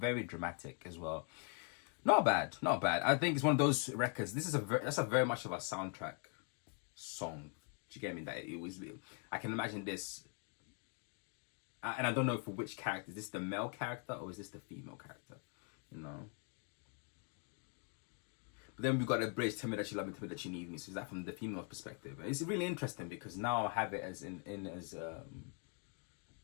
dramatic as well. Not bad. I think it's one of those records. This is that's a very much of a soundtrack song. Do you get me? That it was. I can imagine this, and I don't know for which character. Is this the male character or is this the female character? But then we've got a bridge. Tell me that you love me. Tell me that you need me. So is that from the female perspective? It's really interesting because now I have it as as a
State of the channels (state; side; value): quieter; right; 39.5 dB